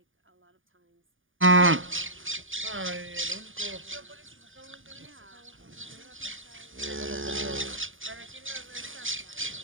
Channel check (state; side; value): late; left; 0.58 ms